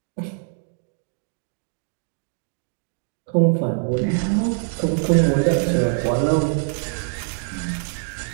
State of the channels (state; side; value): silent; left; digital silence